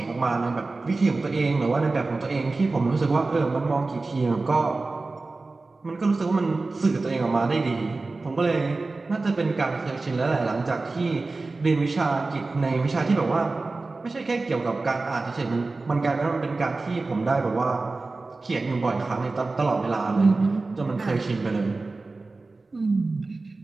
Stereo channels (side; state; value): left; quieter; 3.5 dB